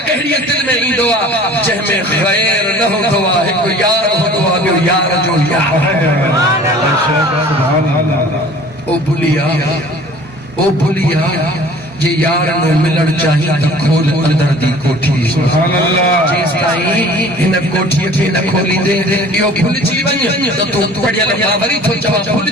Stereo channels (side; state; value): both; normal; correlation 0.48